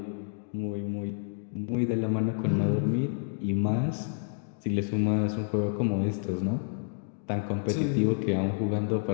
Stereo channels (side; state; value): right; silent; digital silence